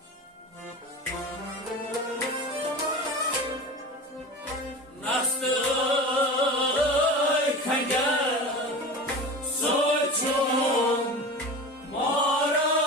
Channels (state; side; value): normal; both; correlation 0.32